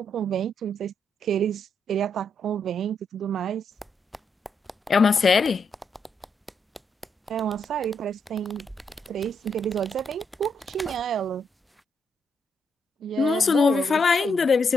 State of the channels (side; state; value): both; normal; correlation 0.78